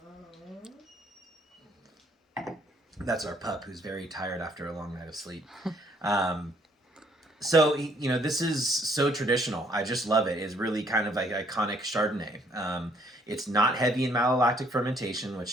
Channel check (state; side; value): normal; both; correlation 0.65